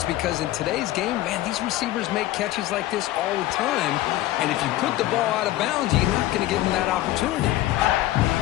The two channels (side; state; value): right; quieter; 15.4 dB